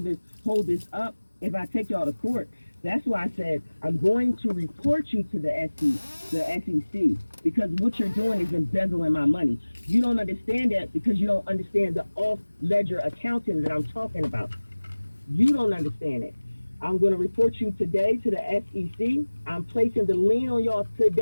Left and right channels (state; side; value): inverted; both; correlation -1.00